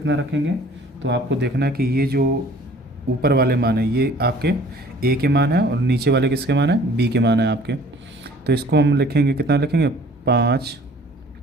रखेंगे, तो आपको देखना है कि ये जो ऊपर वाले मान है ये आपके a के मान है और नीचे वाले किसके मान है, b के मान है आपके। तो इसको हम लिखेंगे, कितना लिखेंगे, 5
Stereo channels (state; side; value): normal; both; correlation 0.52